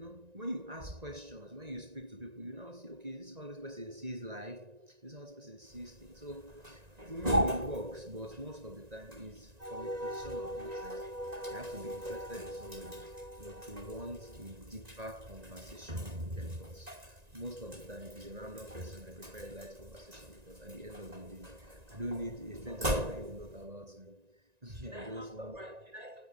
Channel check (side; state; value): left; late; 1.9 ms